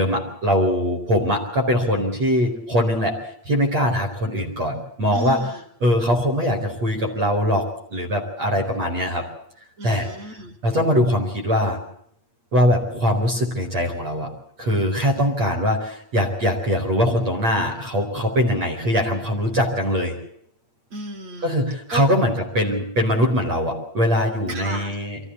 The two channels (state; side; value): late; left; 8.6 ms